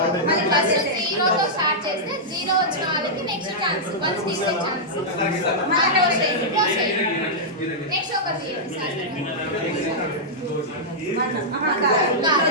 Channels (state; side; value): normal; both; correlation -0.09